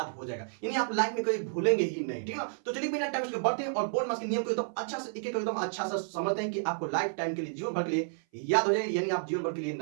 हो जाएगा, यानी आप लाइफ में कभी भूलेंगे ही नहीं। ठीक है, तो चलिए बिना टाइम बढ़ते हैं और बोर्ड मास के नियम को एकदम अच्छा से एक एक एकदम अच्छा से समझते हैं कि आपको लाइफ टाइम के लिए, जीवन भर के लिए याद हो जाए, यानी आप जीवन भर के लिए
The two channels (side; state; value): left; silent; 57 dB below the other